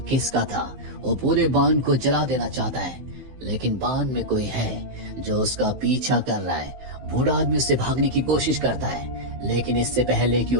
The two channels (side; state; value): left; late; 15 ms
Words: किसका था। वो पूरे बांध को जला देना चाहता है, लेकिन बांध में कोई है जो उसका पीछा कर रहा है। बूढ़ा आदमी उससे भागने की कोशिश करता है, लेकिन इससे पहले कि